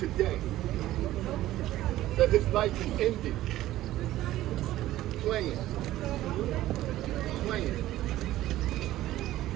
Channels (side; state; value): left; quieter; 14.9 dB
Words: That his life is ended. Playing.